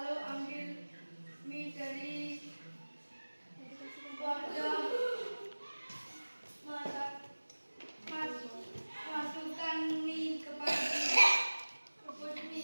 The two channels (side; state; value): both; inverted; correlation -1.00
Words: ambil mie dari wadah, masukkan mie ke panci, rebus